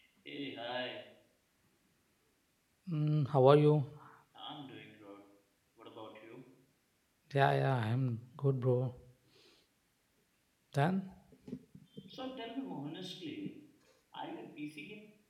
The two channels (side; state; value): both; identical; correlation 1.00